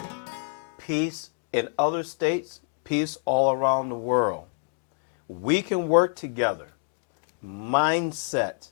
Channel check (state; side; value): silent; right; digital silence